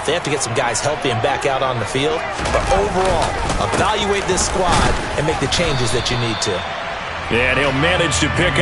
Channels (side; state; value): both; identical; correlation 1.00